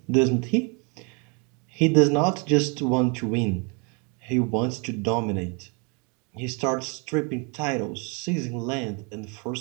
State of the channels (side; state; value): left; quieter; 33.7 dB